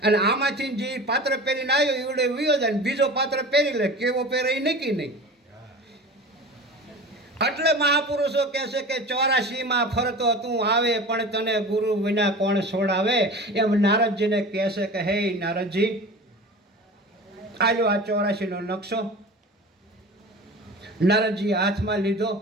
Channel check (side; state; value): both; normal; correlation 0.36